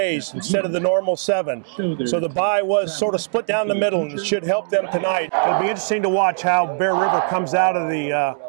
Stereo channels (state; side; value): silent; left; digital silence